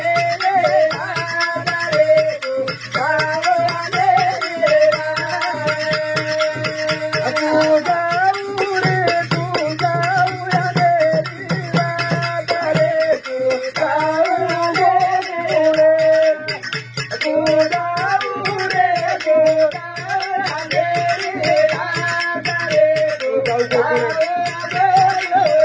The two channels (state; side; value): identical; both; correlation 1.00